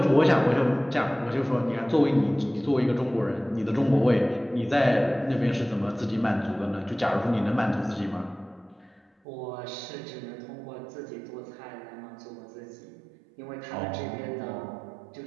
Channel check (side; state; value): left; drops out; at 9.1 s